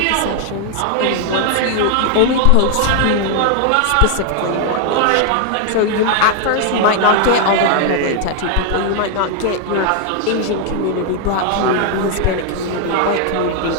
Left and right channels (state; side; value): different; both; correlation 0.00